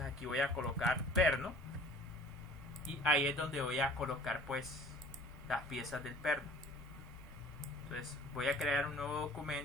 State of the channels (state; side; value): normal; both; correlation 0.48